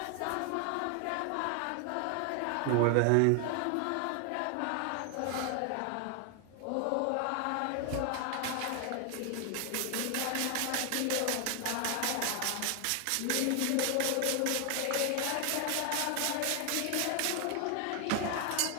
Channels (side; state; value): both; different; correlation 0.00